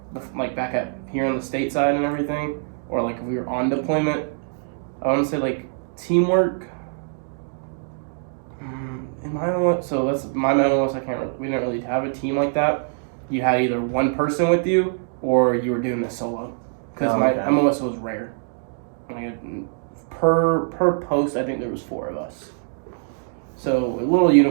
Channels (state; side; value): silent; left; digital silence